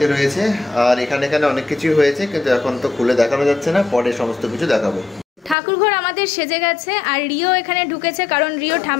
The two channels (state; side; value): drops out; right; at 5.6 s